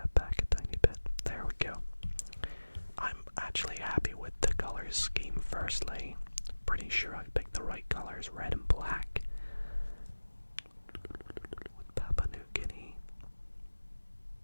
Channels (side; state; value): both; inverted; correlation -1.00